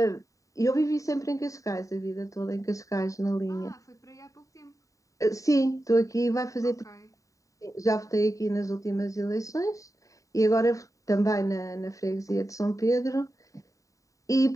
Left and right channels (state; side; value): late; right; 0.16 ms